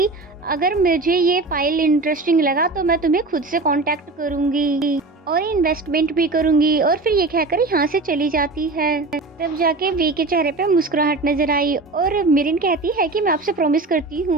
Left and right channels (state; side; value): quieter; left; 3.4 dB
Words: अगर मुझे ये फाइल इंटरेस्टिंग लगा तो मैं तुम्हें खुद से कांटेक्ट करूंगी और इन्वेस्टमेंट भी करूंगी। और फिर ये कहकर यहाँ से चली जाती है। तब जाके वी के चेहरे पे मुस्कुराहट नजर आई और मिरिन कहती है कि मैं आपसे प्रॉमिस करती